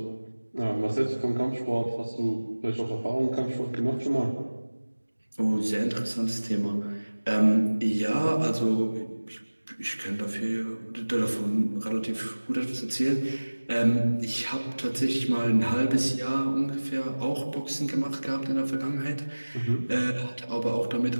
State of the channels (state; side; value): inverted; both; correlation -1.00